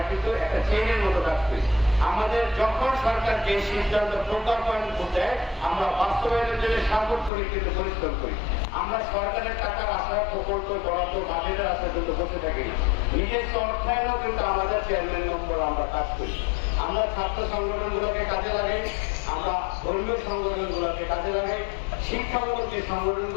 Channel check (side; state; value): right; drops out; at 7.3 s